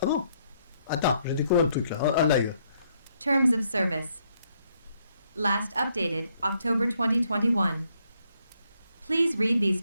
Ah bon. Attends, j'ai découvert un truc là, en live. Terms of service. Last updated October 2021. Please read these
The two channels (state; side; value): inverted; both; correlation -0.72